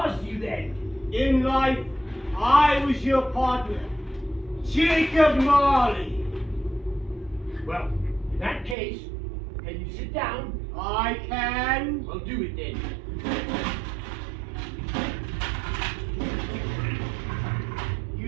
you then? In life, I was your partner, Jacob Marley. Well, in that case, can you sit down? I can. Well, do it then.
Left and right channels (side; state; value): left; drops out; at 8.8 s